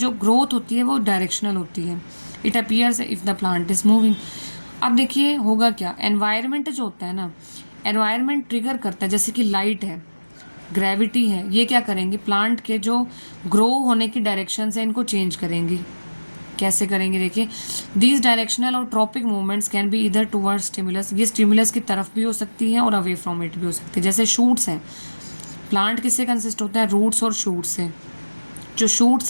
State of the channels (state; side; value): inverted; both; correlation -1.00